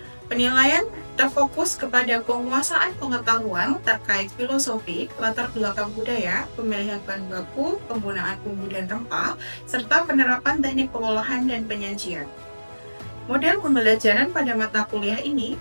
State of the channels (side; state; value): both; inverted; correlation -1.00